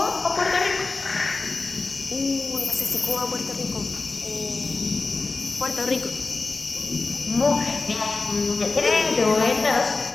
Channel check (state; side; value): quieter; right; 3.8 dB